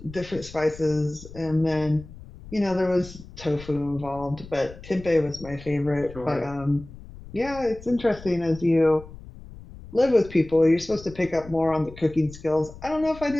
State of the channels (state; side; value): noise; left; rumble, 17 dB below the sound